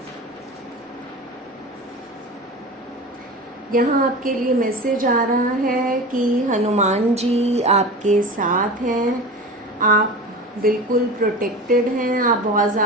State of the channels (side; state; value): both; normal; correlation 0.31